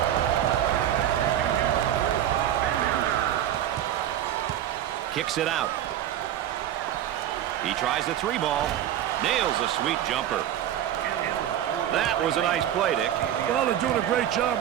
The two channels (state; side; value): quieter; left; 11.3 dB